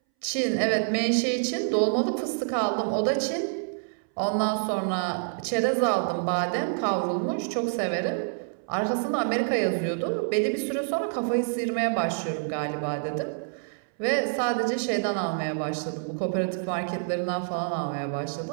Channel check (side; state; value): left; silent; 60 dB below the other